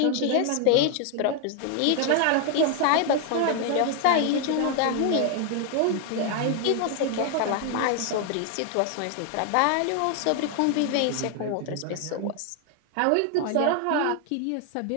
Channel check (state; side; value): different; both; correlation 0.00